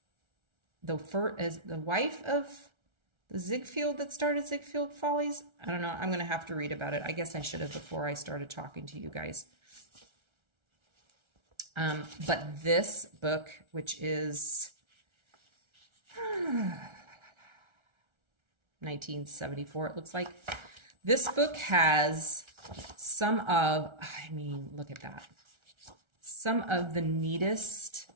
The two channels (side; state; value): left; late; 1.3 ms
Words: the wife of the Ziegfeld that started Ziegfeld Follies? I don't know. I'm going to have to read about it. I guess I should have before I started talking to you guys. But this book, which is 1974, it looks like. This book has some of, look at that. Some of the neatest